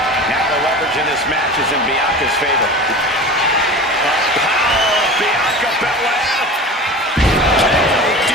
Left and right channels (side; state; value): both; normal; correlation 0.34